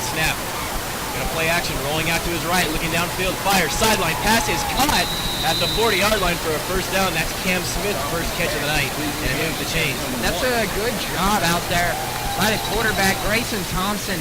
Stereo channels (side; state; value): both; identical; correlation 1.00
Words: snap. Gonna play action, rolling out to his right, looking downfield, fires, sideline, pass is caught at the 40-yard line for a first down. That's Cam Smith's first catch of the night, and it moves the chains. That's a good job out there by the quarterback, Grayson Thompson,